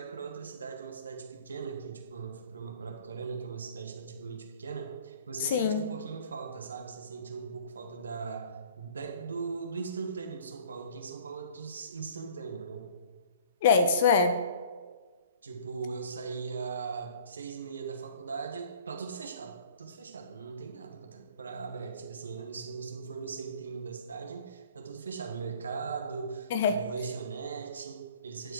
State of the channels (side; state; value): both; inverted; correlation -0.49